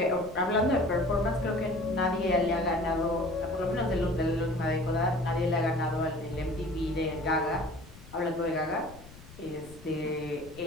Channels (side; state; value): left; noise; rumble, 19 dB below the sound